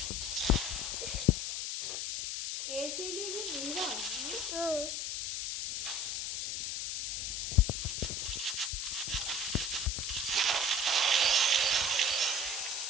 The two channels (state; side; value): noise; left; hiss, 2 dB below the sound